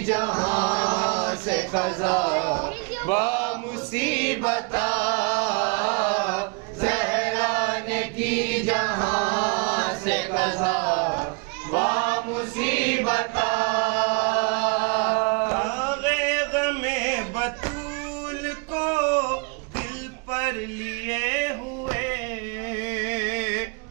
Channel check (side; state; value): left; quieter; 32.6 dB